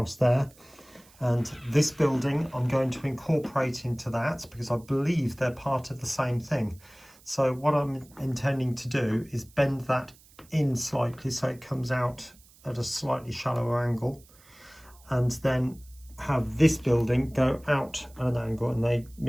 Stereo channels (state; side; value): noise; right; hiss, 26 dB below the sound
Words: there. And this building I'm going to incorporate into that, because I believe they're part of the same thing. So what I'm intending to do is bend that in slightly so it comes out at a slightly shallower angle, and then have this building go out at an angle and they